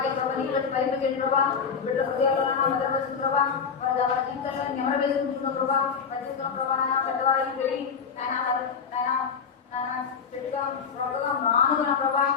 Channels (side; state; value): right; quieter; 6.2 dB